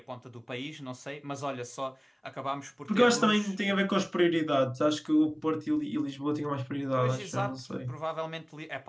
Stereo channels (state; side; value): identical; both; correlation 1.00